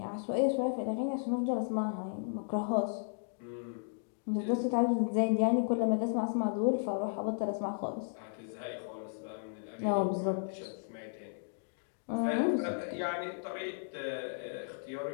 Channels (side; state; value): right; silent; digital silence